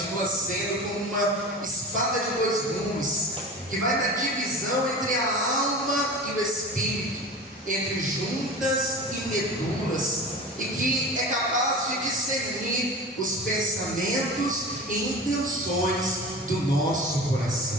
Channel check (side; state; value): both; normal; correlation 0.33